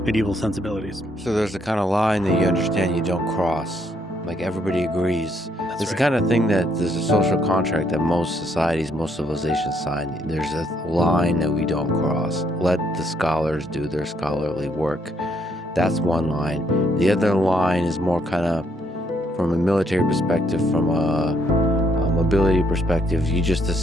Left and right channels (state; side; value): normal; both; correlation 0.71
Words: medieval sensibilities. So there's a kind of line that you understand you don't cross. Like everybody agrees. That's It's right. the kind of thing that there's a social contract that most societies, most civilizations sign. There's a line that we don't cross. Let the scholars do their scholarly work. That's one line. The other line is more kind of from a military perspective, from a mobility perspective. You just